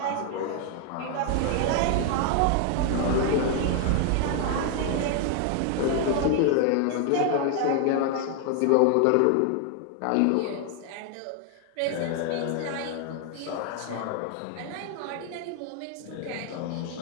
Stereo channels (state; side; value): different; both; correlation 0.00